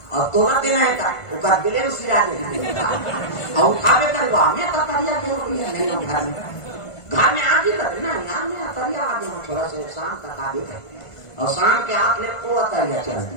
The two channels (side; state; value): right; late; 1.5 ms